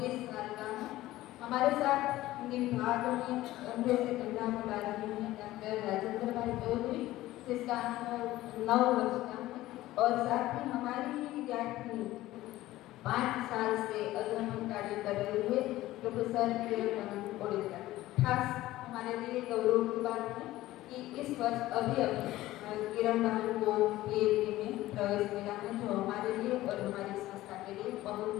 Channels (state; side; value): quieter; right; 16.2 dB